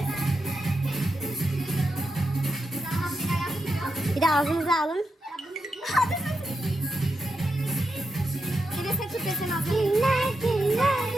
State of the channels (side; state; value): both; normal; correlation 0.86